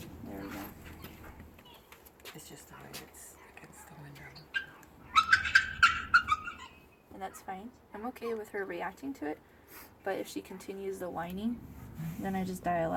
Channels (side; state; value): both; identical; correlation 1.00